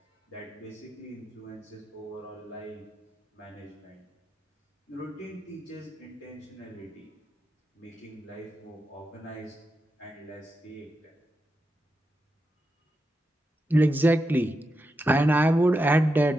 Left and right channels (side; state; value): both; normal; correlation 0.87